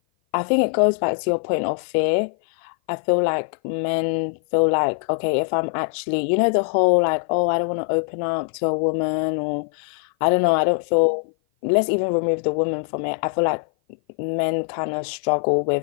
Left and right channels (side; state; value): right; silent; 56 dB below the other